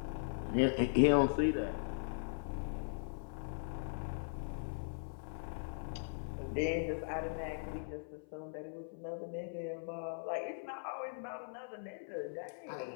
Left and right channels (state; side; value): silent; right; 51 dB below the other